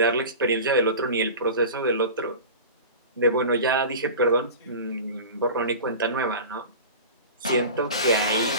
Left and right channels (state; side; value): inverted; both; correlation -0.33